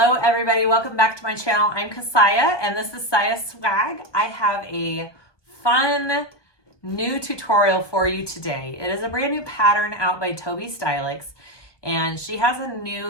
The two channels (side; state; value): right; late; 1.3 ms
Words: everybody, welcome back to my channel. I'm Kassiah and this is SiahSwag. I have a fun new tutorial for you today. It is a brand new pattern out by Tobi Stylx, and she has a new